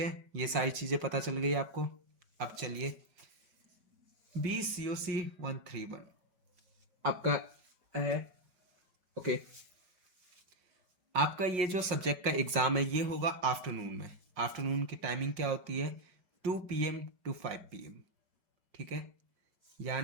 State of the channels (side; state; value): left; late; 5.5 ms